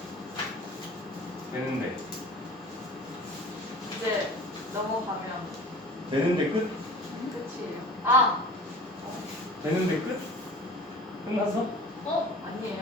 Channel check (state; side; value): normal; both; correlation 0.42